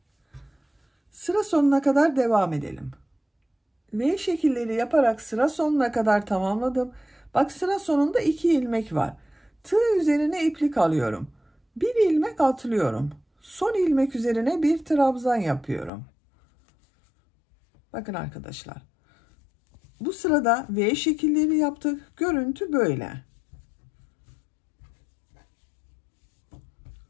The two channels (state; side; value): drops out; right; at 15.9 s